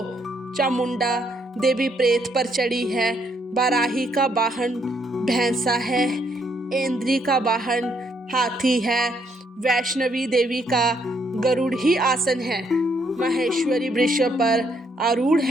चामुंडा देवी प्रेत पर चढ़ी है। बाराही का वाहन भैंसा है। इंद्री का वाहन हाथी है। वैष्णवी देवी का गरुड़ ही आसन है। महेश्वरी वृक्ष पर आरूढ़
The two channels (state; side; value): normal; both; correlation 0.72